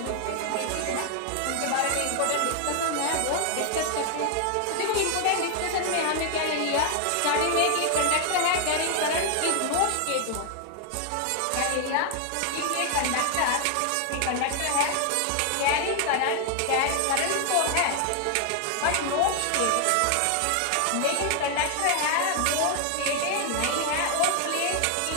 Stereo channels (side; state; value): both; different; correlation 0.00